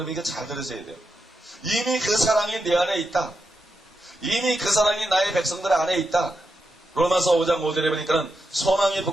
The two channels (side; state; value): both; normal; correlation 0.86